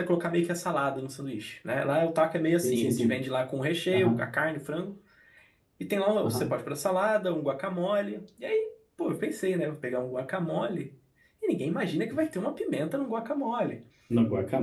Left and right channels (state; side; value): identical; both; correlation 1.00